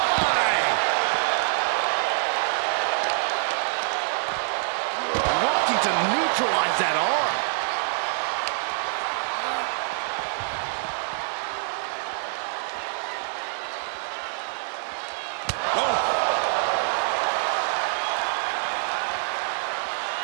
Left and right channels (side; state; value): left; silent; digital silence